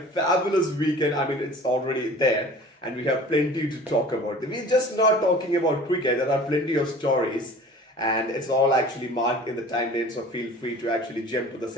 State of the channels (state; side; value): normal; both; correlation 0.44